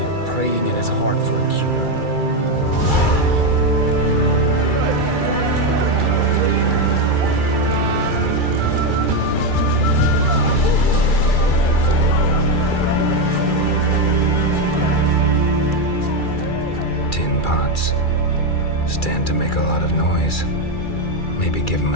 praying in his heart for a cure. Stand to make a lot of noise. Maybe give him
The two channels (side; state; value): right; late; 2.3 ms